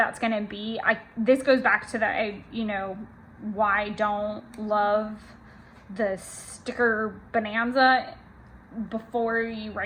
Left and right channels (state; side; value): identical; both; correlation 1.00